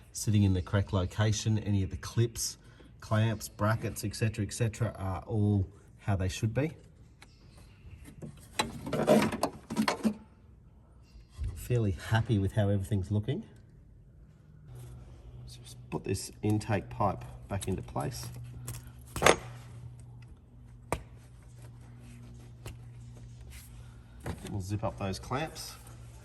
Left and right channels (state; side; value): identical; both; correlation 1.00